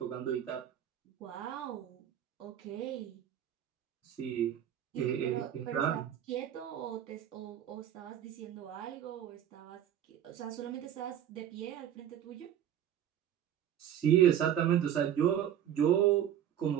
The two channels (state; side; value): quieter; left; 10.4 dB